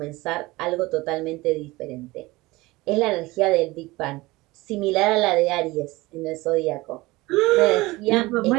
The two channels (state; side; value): quieter; left; 20.9 dB